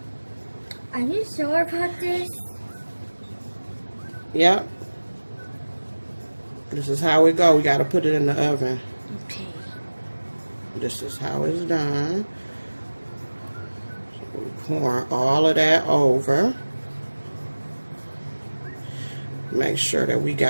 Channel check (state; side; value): inverted; both; correlation -1.00